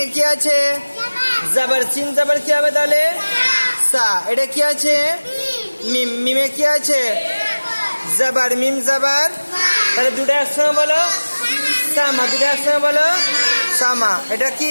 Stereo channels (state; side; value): inverted; both; correlation -1.00